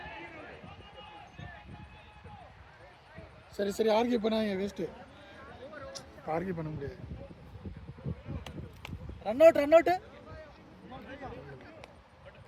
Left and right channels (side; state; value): both; identical; correlation 1.00